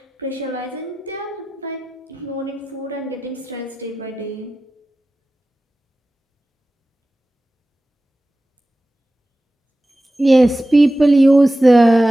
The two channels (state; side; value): normal; both; correlation 0.94